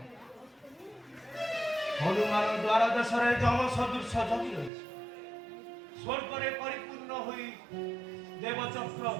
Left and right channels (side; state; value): left; drops out; at 4.7 s